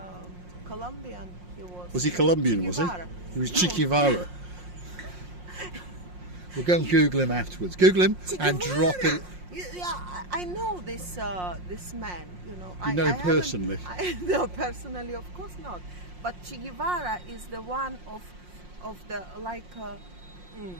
Colombian he was. Was he Colombian, Che was he? Guevara. He was No. Che Guevara. We'll go and Google him afterwards. Google him Che and Guevara. drop it. Yeah, I know this man. You know. You know him personally? No, personally, of course not. But Che Guevara is the one of the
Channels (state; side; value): late; left; 5.6 ms